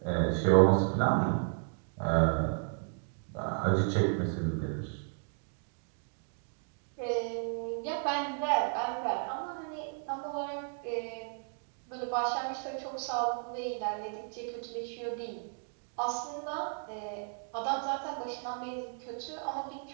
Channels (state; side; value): silent; left; 55 dB below the other